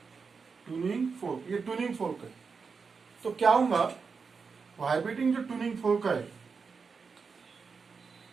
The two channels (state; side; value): quieter; left; 5.2 dB